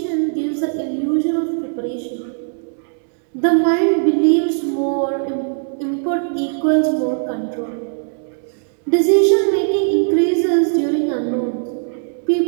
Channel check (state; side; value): silent; left; digital silence